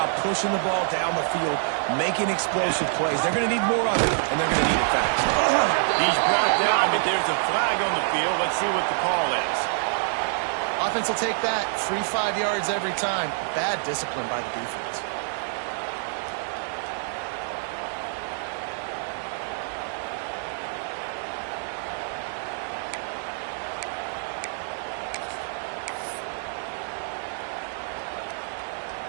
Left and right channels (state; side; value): silent; left; 61 dB below the other